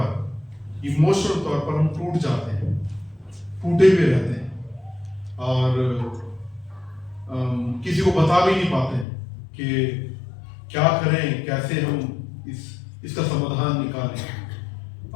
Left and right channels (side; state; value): right; drops out; at 9.1 s